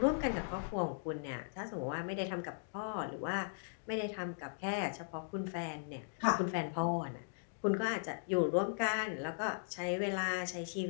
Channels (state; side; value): silent; right; digital silence